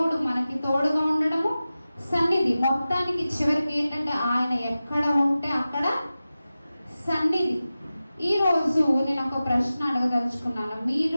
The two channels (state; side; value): inverted; both; correlation -0.95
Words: మనకి తోడుగా ఉండడము సన్నిధి. మొత్తానికి చివరికి ఏంటంటే ఆయన ఎక్కడ ఉంటే అక్కడ సన్నిధి. ఈరోజు నేను ఒక ప్రశ్న అడగదలుచుకున్నాను.